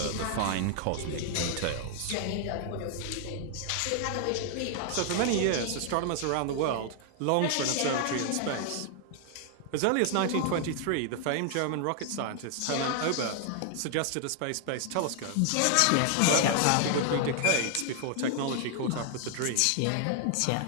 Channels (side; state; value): both; different; correlation 0.00